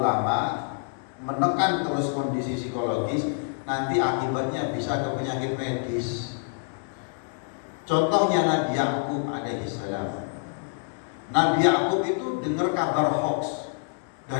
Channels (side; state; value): right; silent; digital silence